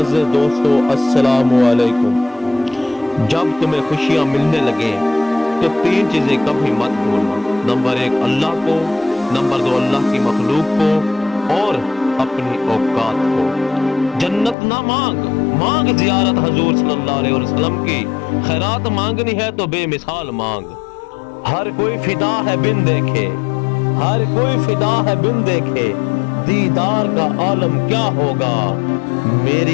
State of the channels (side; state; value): right; drops out; at 14.6 s